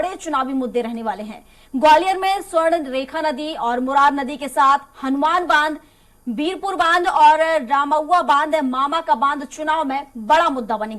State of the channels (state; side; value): identical; both; correlation 1.00